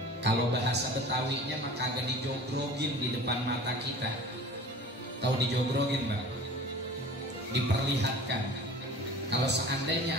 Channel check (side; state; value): both; normal; correlation 0.41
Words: Kalau bahasa Betawinya maka agak dijogrogin di depan mata kita. Tahu dijogrogin, Mbak? Diperlihatkan. Kalau